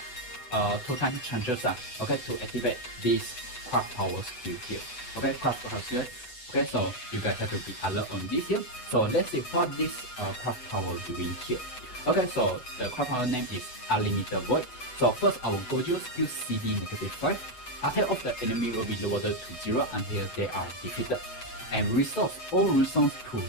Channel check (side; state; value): right; late; 8.0 ms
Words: time chances okay, to activate this craft power skill here. Okay, craft power skill. Okay, so you guys have to be alert on this here. So let's see what this craft power doing here. Okay, so the craft power name is Unlimited Void. So first, our Gojo skill CD -5. Attack of the enemy will be lowered to 0 until they are defeated, and restores all runestones to